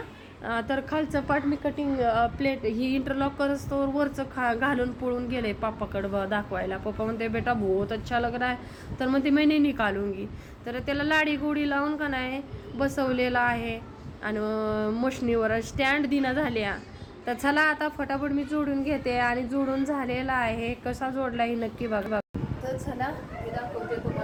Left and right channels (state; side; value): identical; both; correlation 1.00